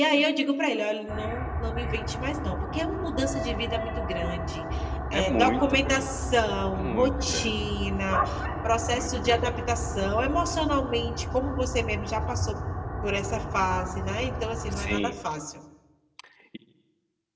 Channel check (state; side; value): identical; both; correlation 1.00